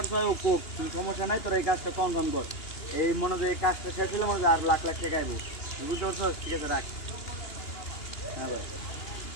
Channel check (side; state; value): right; late; 2.9 ms